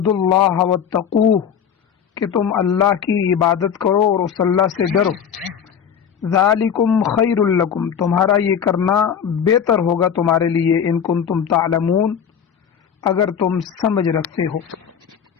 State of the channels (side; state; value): right; quieter; 7.9 dB